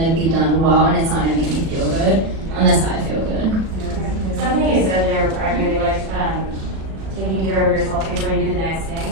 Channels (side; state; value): left; late; 36 ms